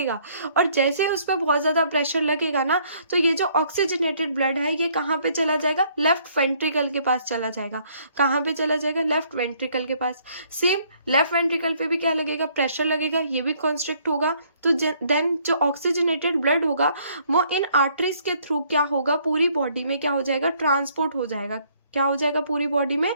और जैसे ही उस पर बहुत ज्यादा प्रेशर लगेगा ना, तो ये जो ऑक्सीजनेटेड ब्लड है ये कहाँ पे चला जाएगा, लेफ्ट वेंट्रिकल के पास चला जाएगा। कहाँ पे चला जाएगा, लेफ्ट वेंट्रिकल के पास। सेम लेफ्ट वेंट्रिकल पे भी क्या लगेगा, प्रेशर लगेगा, ये भी कॉन्स्ट्रिक्ट होगा। तो देन जो ऑक्सीजनेटेड ब्लड होगा वो इन आर्टरीज के थ्रू क्या होगा, पूरी बॉडी में क्या हो जाएगा, ट्रांसपोर्ट हो जाएगा। क्या हो जाएगा, पूरी बॉडी में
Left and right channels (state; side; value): inverted; both; correlation -0.64